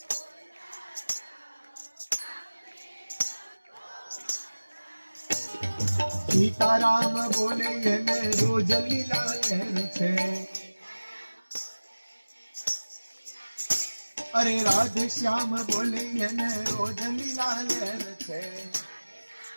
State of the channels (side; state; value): both; inverted; correlation -1.00